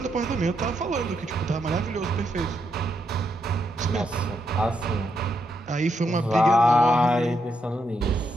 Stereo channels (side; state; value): both; normal; correlation 0.80